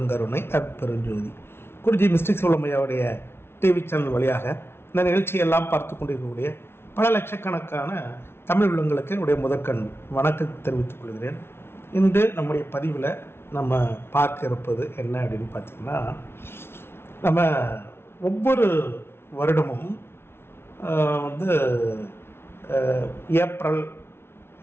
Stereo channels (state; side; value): late; right; 0.12 ms